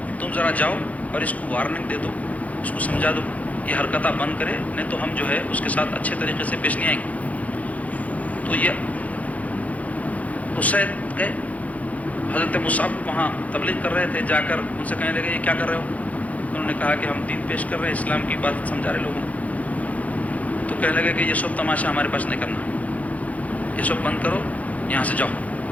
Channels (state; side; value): late; right; 0.070 ms